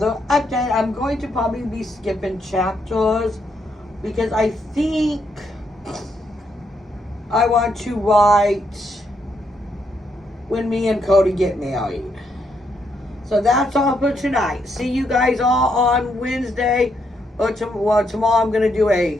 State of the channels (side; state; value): both; normal; correlation 0.77